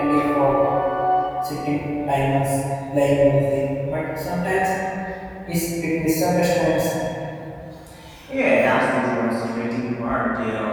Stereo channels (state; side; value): identical; both; correlation 1.00